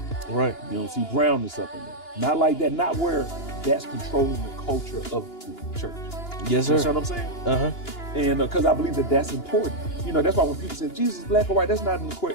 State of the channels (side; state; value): right; late; 2.9 ms